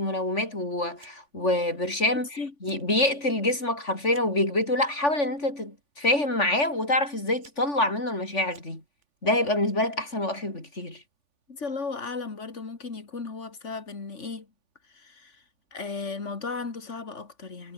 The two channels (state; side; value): late; right; 3.5 ms